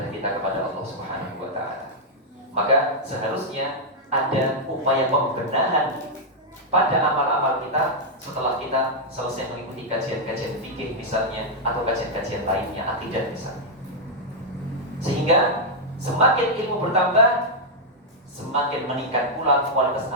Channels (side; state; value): both; normal; correlation -0.04